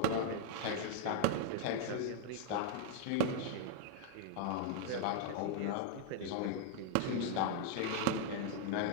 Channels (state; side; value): different; both; correlation 0.00